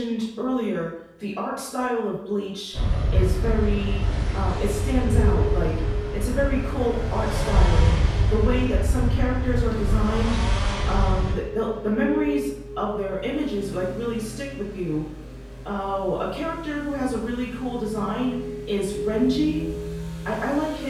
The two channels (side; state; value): both; identical; correlation 1.00